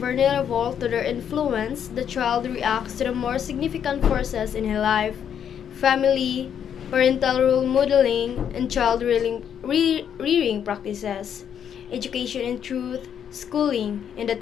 to their influence, the child reacts to the more significant forces in his life: family, parental role modeling, and child rearing practices, education and truth, schooling, and the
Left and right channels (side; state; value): right; quieter; 8.6 dB